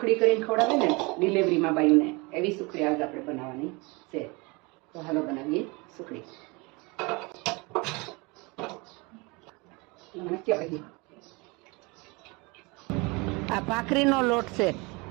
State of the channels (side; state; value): left; quieter; 27.0 dB